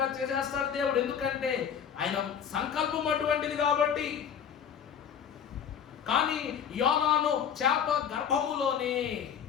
చేసేస్తాడు దేవుడు. ఎందుకంటే ఆయన సంకల్పం అటువంటిది కాబట్టి. కానీ యోనాను చేప గర్భములోనే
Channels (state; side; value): quieter; right; 8.0 dB